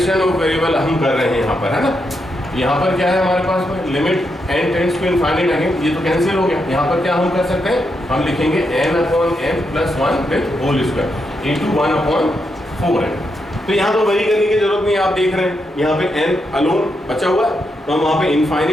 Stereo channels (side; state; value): both; normal; correlation 0.82